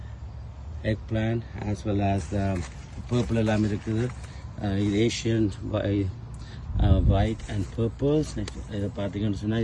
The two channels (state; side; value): identical; both; correlation 1.00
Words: egg plan as well as purple எல்லாம் இருக்குது. இது ஏஷியன் ஒயிட் அண்ட் பர்பிள்ஸ். இதை பார்த்தீங்கன்னு சொன்னால்